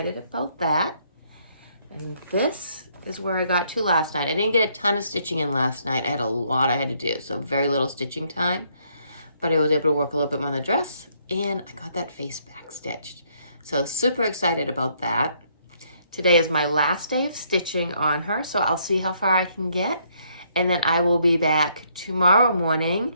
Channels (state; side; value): inverted; both; correlation -0.70